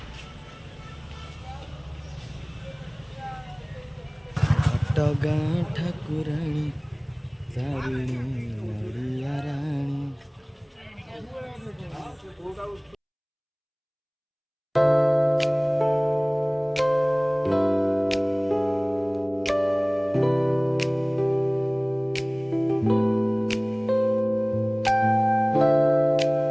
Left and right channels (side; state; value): both; identical; correlation 1.00